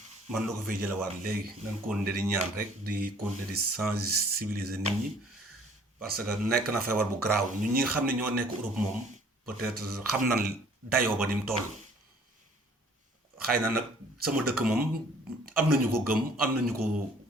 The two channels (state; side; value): normal; both; correlation 0.56